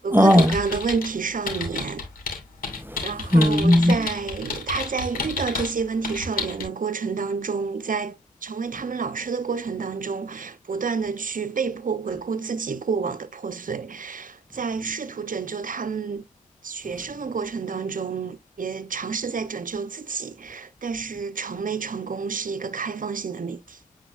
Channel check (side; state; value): both; normal; correlation 0.65